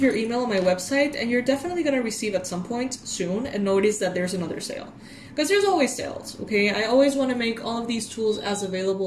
your email on my website, and you're definitely going to receive at some point soon and notice that there's another sale, because there's always sales. Okay, I always want to make all of these tools as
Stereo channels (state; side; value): identical; both; correlation 1.00